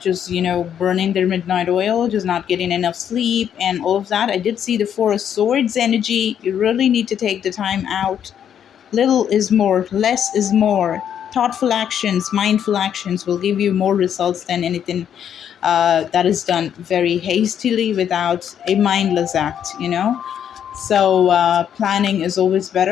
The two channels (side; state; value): right; quieter; 9.1 dB